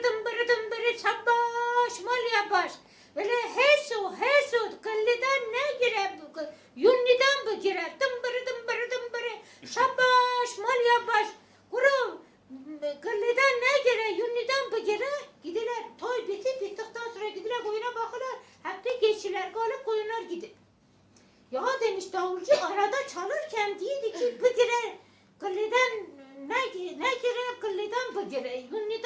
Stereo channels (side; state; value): both; identical; correlation 1.00